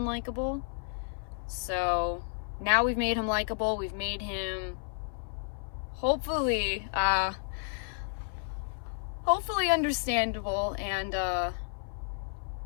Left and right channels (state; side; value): silent; right; 57 dB below the other